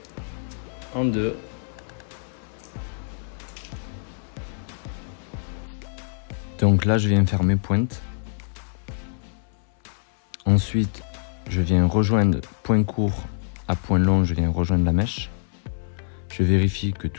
en deux. Donc là, je viens faire mes pointes. Ensuite, je viens rejoindre point court à point long, je viens rejoindre la mèche. Je vérifie que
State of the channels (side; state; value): right; silent; 62 dB below the other